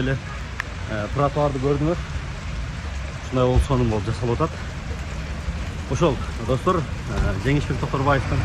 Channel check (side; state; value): both; identical; correlation 1.00